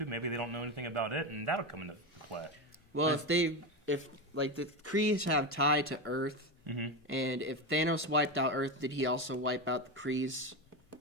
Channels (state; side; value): normal; both; correlation 0.16